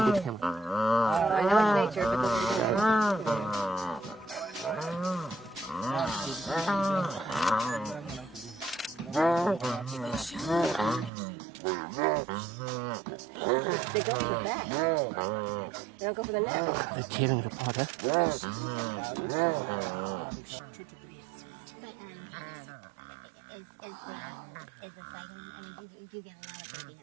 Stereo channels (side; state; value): left; drops out; at 11.1 s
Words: get him. I know it's nature, but they go for the back. They don't go for the neck. They're tearing it apart, huh? But is the sighting? I mean, do you get a lot of baby